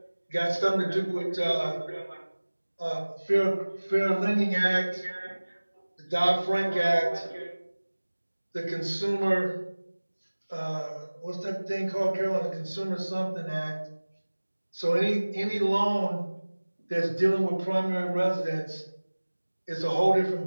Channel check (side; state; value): both; inverted; correlation -1.00